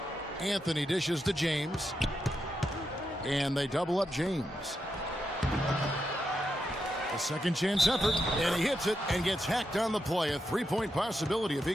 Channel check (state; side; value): normal; both; correlation 0.85